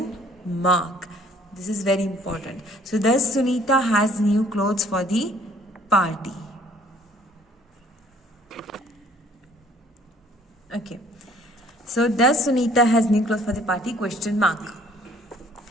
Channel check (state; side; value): normal; both; correlation 0.58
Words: mark. This is very important. So does Sunita has new clothes for the party? Okay. So does Sunita has new clothes for the party, question mark.